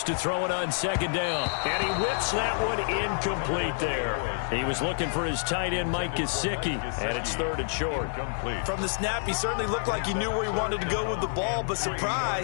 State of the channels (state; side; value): silent; right; digital silence